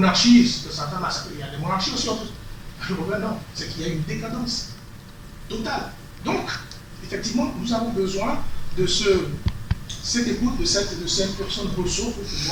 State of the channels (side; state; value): both; identical; correlation 1.00